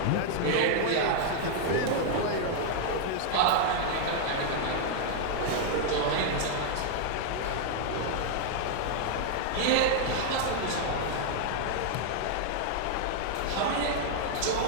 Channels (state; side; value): different; both; correlation 0.00